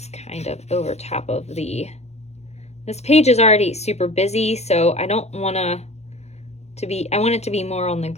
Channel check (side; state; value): right; late; 0.31 ms